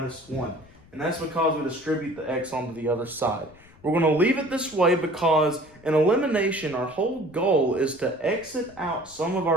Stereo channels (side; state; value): left; noise; rumble, 25 dB below the sound